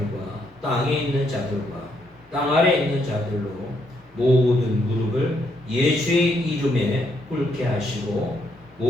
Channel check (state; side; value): normal; both; correlation 0.74